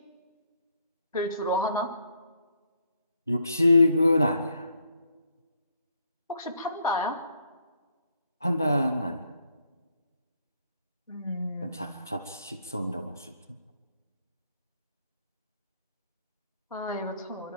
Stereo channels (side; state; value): both; inverted; correlation -0.71